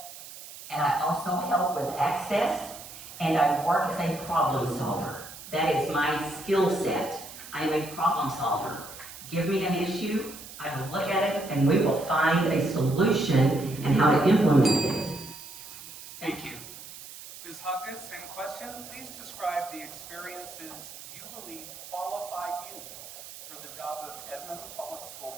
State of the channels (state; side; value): noise; right; hiss, 14 dB below the sound